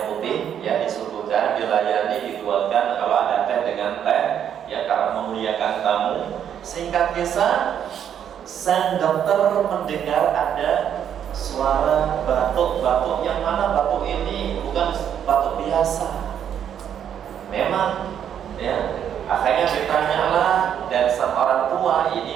putih ya disuguhkan, dilayani, dituangkan, kalau ada teh dengan teh ya, karena memuliakan tamu. Singkat kisah, sang dokter mendengar ada suara batuk-batuk, yang mana batuk ini bukan batuk biasa. Memang ya, akhirnya ditanyalah, dan sang orang tua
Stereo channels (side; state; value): left; quieter; 9.1 dB